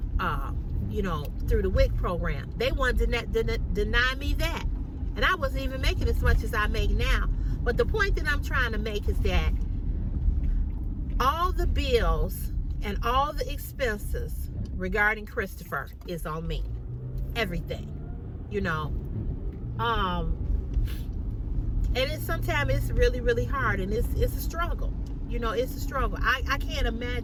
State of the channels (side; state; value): both; identical; correlation 1.00